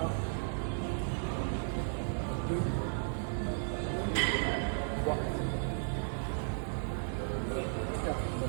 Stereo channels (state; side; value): silent; left; digital silence